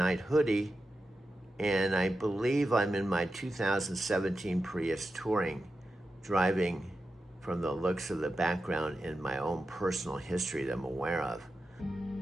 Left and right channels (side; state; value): both; normal; correlation 0.90